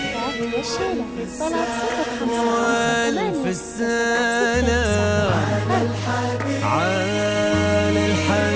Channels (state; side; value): identical; both; correlation 1.00